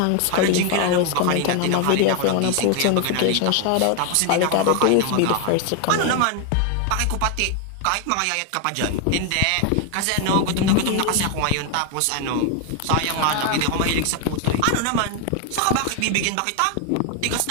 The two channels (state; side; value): different; both; correlation 0.01